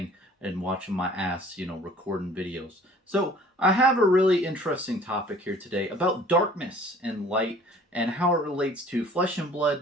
and watching my ass, recording videos. So I have a really interesting topic here today about darkness and light and how it relates to flesh and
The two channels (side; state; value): both; normal; correlation 0.51